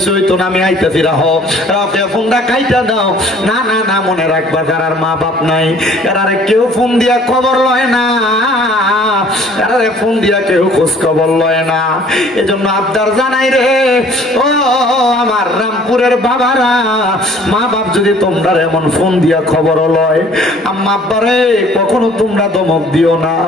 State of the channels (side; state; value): both; normal; correlation 0.54